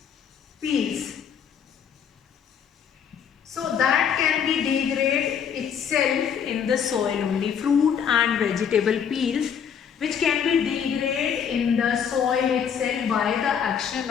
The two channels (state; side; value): quieter; right; 7.7 dB